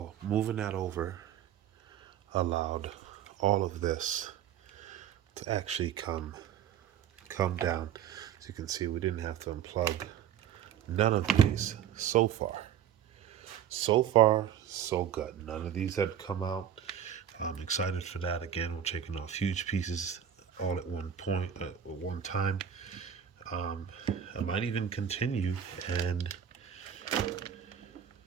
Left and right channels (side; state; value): left; quieter; 9.4 dB